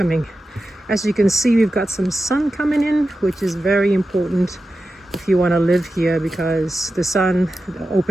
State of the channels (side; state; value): both; normal; correlation 0.92